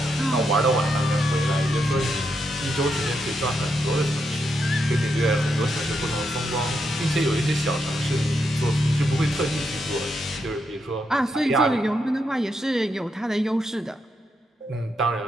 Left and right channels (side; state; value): both; normal; correlation 0.82